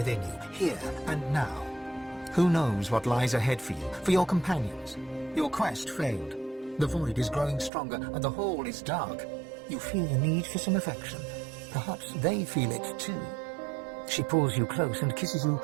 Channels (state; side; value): drops out; left; at 7.7 s